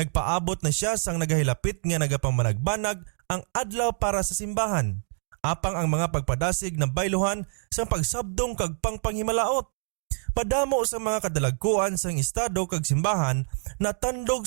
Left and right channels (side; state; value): left; silent; 61 dB below the other